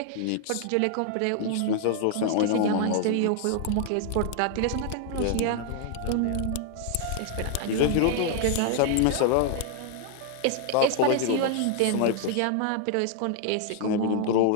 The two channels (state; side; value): different; both; correlation 0.00